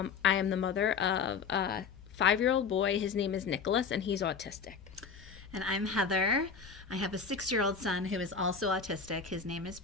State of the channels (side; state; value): right; quieter; 5.7 dB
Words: am the mother of a 5-year-old boy. His name is Nicholas, and he's autistic. And I'm Heather. I have a 6-year-old son who is also autistic. His name is